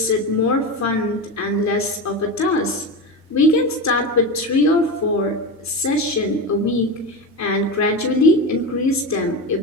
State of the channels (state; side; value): normal; both; correlation 0.20